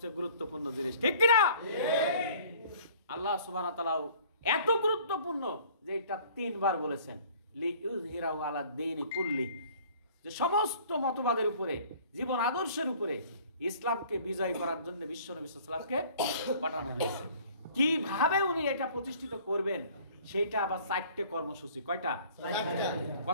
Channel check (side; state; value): both; inverted; correlation -0.52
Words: গুরুত্বপূর্ণ জিনিস, ঠিক কিনা? আল্লাহ সুবহানাহু ওয়া তাআলা এত গুরুত্বপূর্ণ যে এটা তিনবার বলেছেন, লিইউযহিরাহু আলা দ্বীনি কুল্লি, যে সমস্ত মতবাদের উপরে, জীবন আদর্শের উপরে ইসলামকে বিজয় করার জন্য বিশ্ব নবী সাল্লাল্লাহু আলাইহি ওয়াসাল্লামকে পাঠানো হয়েছে। কিভাবে উনি এটা প্রতিষ্ঠিত করবেন সেইটা আবার 4টে কর্মসূচি। কয়টা?